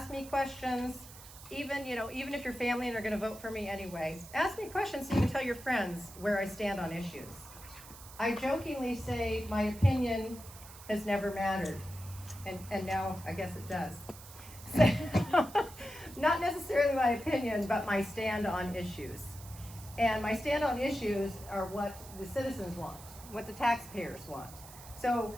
me questions. Even if your family and are going to vote for me anyway, ask me questions so you can tell your friends where I stand on issues. I jokingly say my opinion has never mattered, and now I guess it does. So, not necessarily my opinion, but my stand on issues. And my stand on issues are what the citizens want, what the taxpayers want. So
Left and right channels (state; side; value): noise; right; hiss, 17 dB below the sound